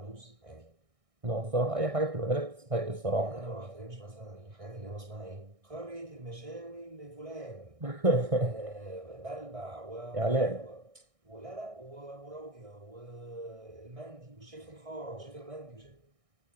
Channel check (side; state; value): left; late; 1.6 ms